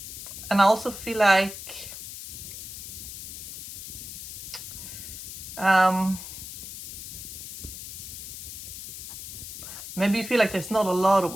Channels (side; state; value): left; noise; hiss, 10 dB below the sound